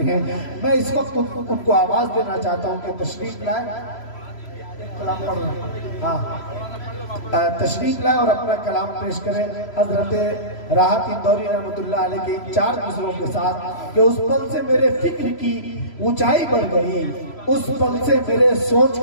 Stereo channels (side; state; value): right; late; 3.0 ms